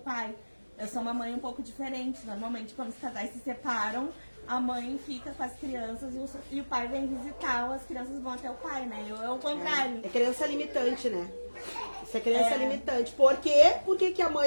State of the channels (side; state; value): both; inverted; correlation -1.00